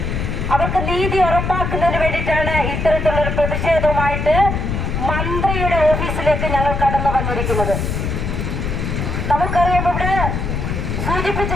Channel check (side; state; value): left; noise; rumble, 2 dB below the sound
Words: അവർക്ക് നീതി ഉറപ്പാക്കുന്നതിന് വേണ്ടിയിട്ടാണ് ഇത്തരത്തിലുള്ളൊരു പ്രതിഷേധവുമായിട്ട് മന്ത്രിയുടെ ഓഫീസിലേക്ക് ഞങ്ങൾ കടന്നു വന്നിരിക്കുന്നത്. നമുക്കറിയാം, ഇവിടെ സൂചിപ്പിച്ചു